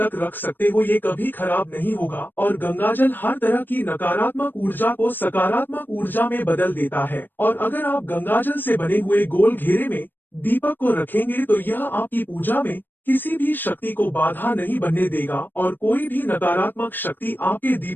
रख सकते हो, ये कभी खराब नहीं होगा और गंगाजल हर तरह की नकारात्मक ऊर्जा को सकारात्मक ऊर्जा में बदल देता है। और अगर आप गंगाजल से बने हुए गोल घेरे में दीपक को रखेंगे तो यह आपकी पूजा में किसी भी शक्ति को बाधा नहीं बनने देगा और कोई भी नकारात्मक शक्ति आपके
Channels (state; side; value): late; right; 0.093 ms